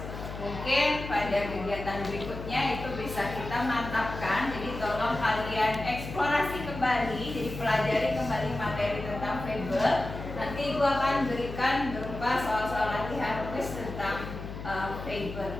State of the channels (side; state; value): left; noise; hum, 9 dB below the sound